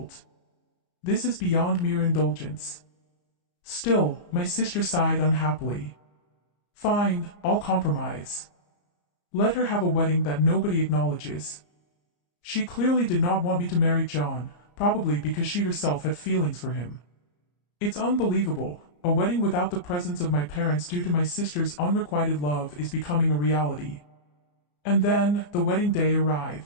This is beyond mere indulgence. Still, my sister sighed unhappily. Fine, I'll compromise. Let her have a wedding that nobody acknowledges. She clearly did not want me to marry John, probably because she herself had feelings for him. It's unbelievable, a wedding without the presence of my parents due to my sister's unrequited love is becoming a reality. And then, the wedding day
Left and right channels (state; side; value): late; right; 34 ms